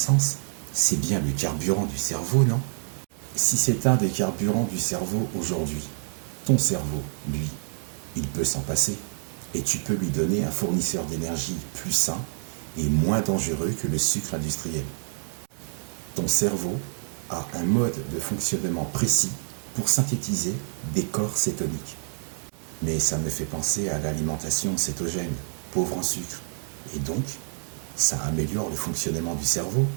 C'est bien le carburant du cerveau, non? Si c'est un des carburants du cerveau aujourd'hui, ton cerveau, lui, il peut s'en passer. Et tu peux lui donner un fournisseur d'énergie plus sain et moins dangereux que le sucre industriel. Ton cerveau a un mode de fonctionnement précis pour synthétiser des corps cétoniques. Mais ça me fait penser à l'alimentation cétogène, pauvre en sucre. Et donc, ça améliore le fonctionnement du cerveau,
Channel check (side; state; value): left; silent; digital silence